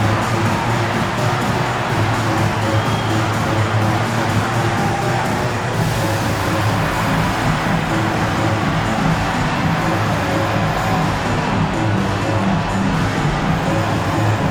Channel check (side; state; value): both; identical; correlation 1.00